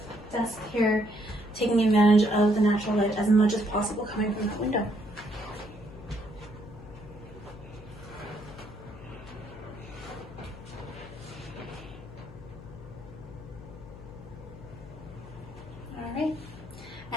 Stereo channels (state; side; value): noise; left; hum, 16 dB below the sound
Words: desk here, taking advantage of the natural light as much as possible coming from that window.